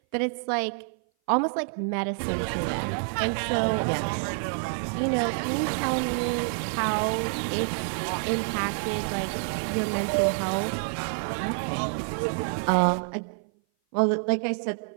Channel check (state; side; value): silent; left; 57 dB below the other